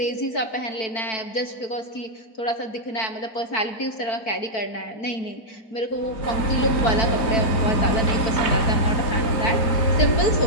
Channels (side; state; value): right; late; 4.5 ms